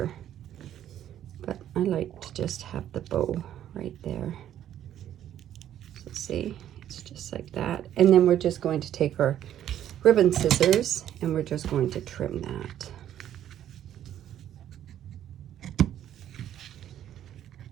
But I like to just have the bow right there. So see, it's just like that. And then we're just going to take our ribbon scissors and we're just going to trim that.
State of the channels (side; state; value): left; quieter; 11.1 dB